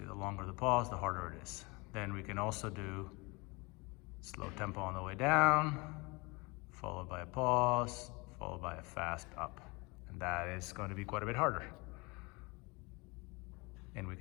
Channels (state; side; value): quieter; right; 26.7 dB